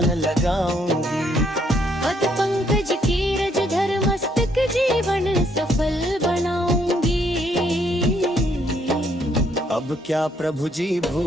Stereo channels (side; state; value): both; normal; correlation 0.70